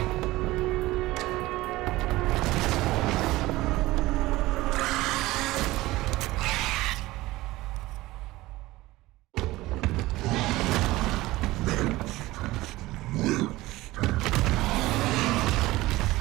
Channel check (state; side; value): quieter; left; 18.6 dB